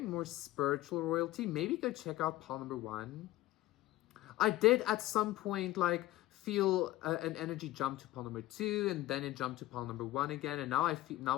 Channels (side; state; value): right; quieter; 16.5 dB